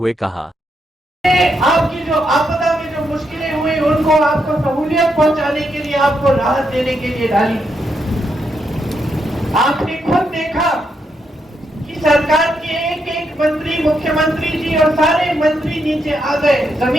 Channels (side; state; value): both; normal; correlation 0.80